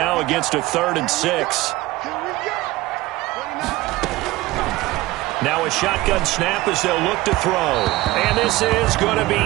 against a 3rd and 6. Now a shotgun snap as they'll look to throw. And this is going to be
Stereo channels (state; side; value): quieter; left; 18.8 dB